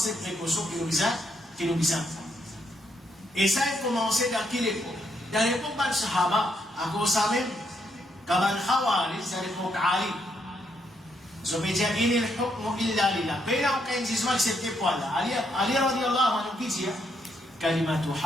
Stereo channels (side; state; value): both; normal; correlation 0.76